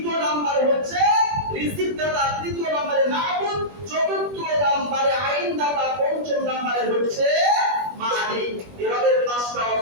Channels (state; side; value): late; left; 21 ms